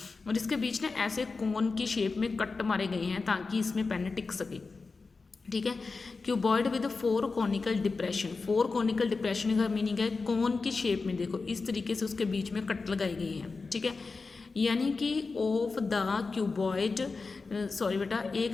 और इसके बीच में ऐसे कोन की शेप में कट मारे गए हैं ताकि इसमें पेन टिक सके। ठीक है, cuboid with 4 conical depression. 4 conical depression का मीनिंग है कोन की शेप में, देखो इस तरीके से उसके बीच में कट लगाई गई है। ठीक है, यानी कि ऑफ द क्यूबॉइड, सॉरी बेटा,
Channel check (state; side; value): quieter; right; 4.2 dB